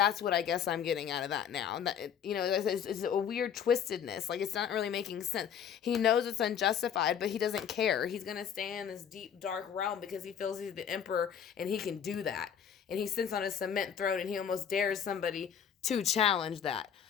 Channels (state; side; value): quieter; right; 8.3 dB